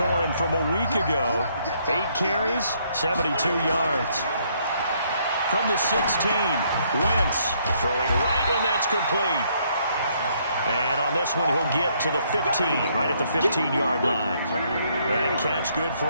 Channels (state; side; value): inverted; both; correlation -0.69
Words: him from a week ago. 8 carries, 72 yards. From the 16, Wentz throwing right, and that's complete. And on this one, he'll get to the 15, right at the 15-yard line. That catch good for